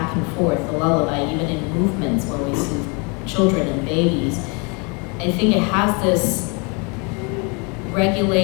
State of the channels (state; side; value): quieter; right; 32.6 dB